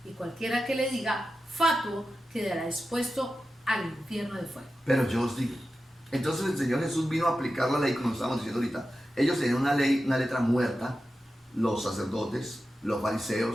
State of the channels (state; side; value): normal; both; correlation 0.92